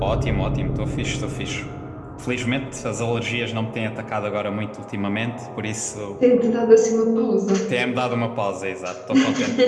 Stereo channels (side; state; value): both; identical; correlation 1.00